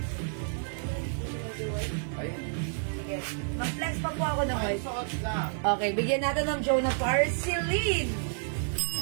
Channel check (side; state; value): left; silent; 58 dB below the other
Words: Ayun. Sige. Mag-flex pa po ako ng Ay, white. suot lang. Okay, bigyan natin ng Jonah Parceline.